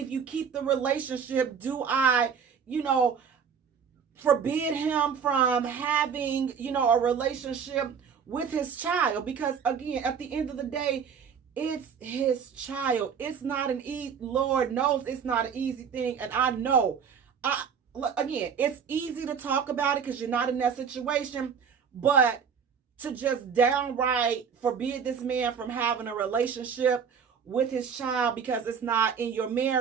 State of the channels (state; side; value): quieter; left; 6.8 dB